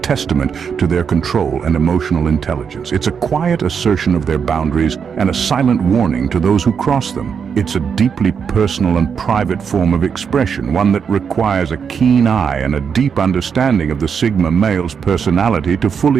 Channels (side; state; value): left; quieter; 6.7 dB